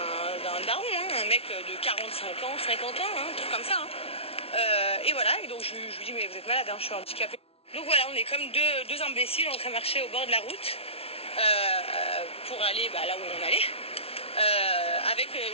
daron, hein, un mec de 45 ans, 50 ans, hein, un truc comme ça. Hein. Et voilà, et donc je lui dis, mais vous êtes malade, hein, je suis handicapée. Donc voilà, on est comme deux imbéciles en train de marcher au bord de la route pour aller là où on allait, avec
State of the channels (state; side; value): late; right; 0.28 ms